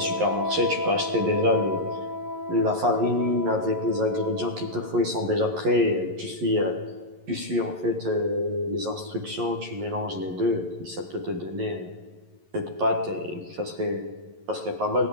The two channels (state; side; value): late; left; 11 ms